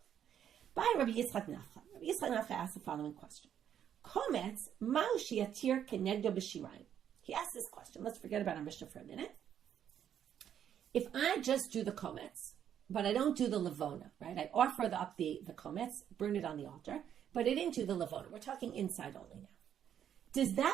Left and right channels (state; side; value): quieter; left; 9.5 dB